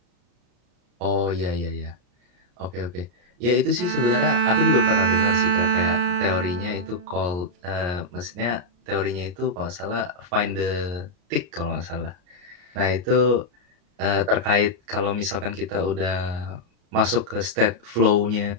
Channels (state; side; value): late; left; 34 ms